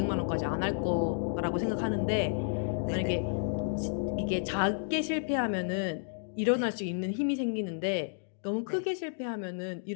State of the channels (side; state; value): right; silent; digital silence